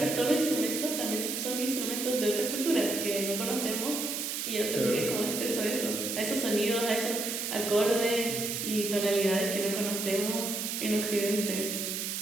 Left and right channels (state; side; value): noise; right; hiss, 3 dB below the sound